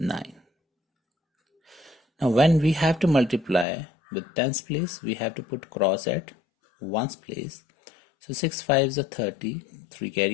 Now when we have to multiply with tens place, we have to put cross at ones place. So 6 5s are 30, 3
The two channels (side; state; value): right; drops out; at 3.7 s